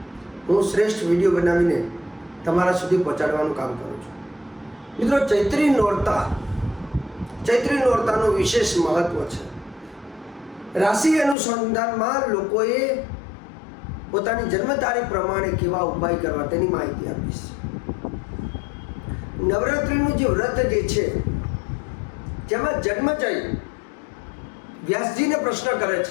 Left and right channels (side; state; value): right; drops out; at 11.4 s